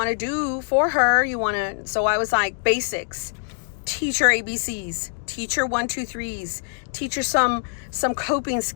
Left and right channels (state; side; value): silent; right; digital silence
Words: to do for her. So I was like, basics. Teach her ABCs, teach her 1, 2, 3s, teach her some coping